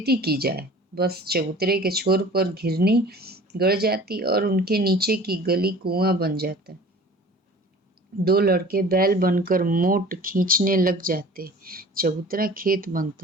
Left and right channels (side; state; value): both; normal; correlation 0.45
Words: की जाए। बस चबूतरे के छोर पर घिरनी गड़ जाती और उनके नीचे की गली कुआं बन जाता। 2 लड़के बैल बनकर मोट खींचने लग जाते। चबूतरा खेत